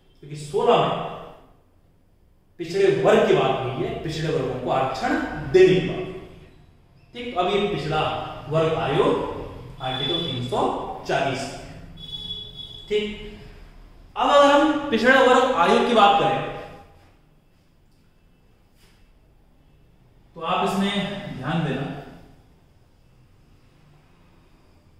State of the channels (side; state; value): both; identical; correlation 1.00